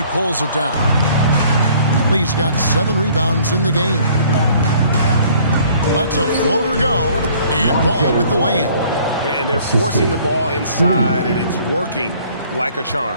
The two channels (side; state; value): both; inverted; correlation -0.57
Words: pulls it down. Lee's got 7 rebounds in the game. Lets a floater go. And Ball with the lay-in. And they're forcing the ball inside, and it's working like a